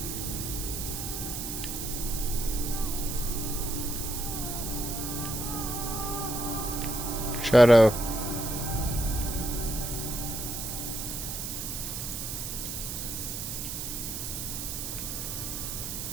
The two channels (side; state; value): right; noise; hiss, 4 dB below the sound